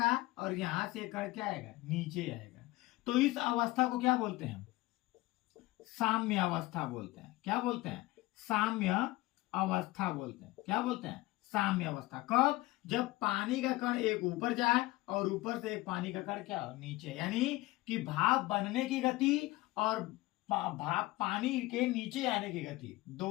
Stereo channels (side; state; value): right; quieter; 19.2 dB